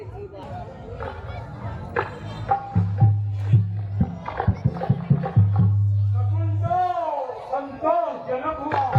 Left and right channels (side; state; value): both; identical; correlation 1.00